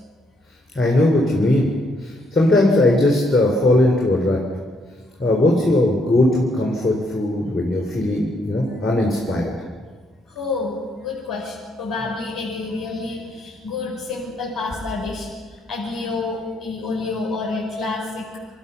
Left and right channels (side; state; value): both; normal; correlation 0.73